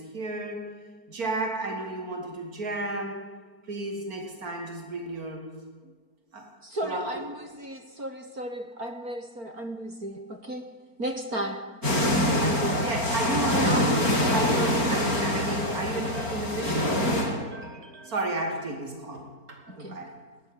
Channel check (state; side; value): late; left; 4.4 ms